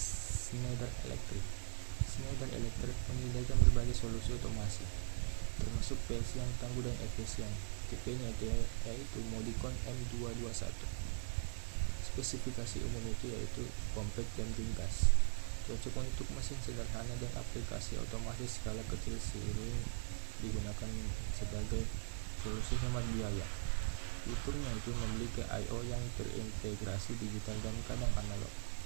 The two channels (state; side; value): silent; left; digital silence